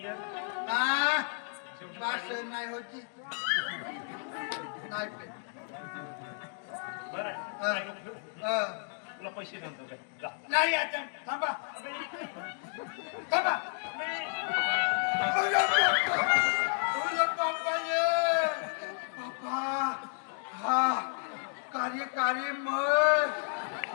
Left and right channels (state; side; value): silent; right; 56 dB below the other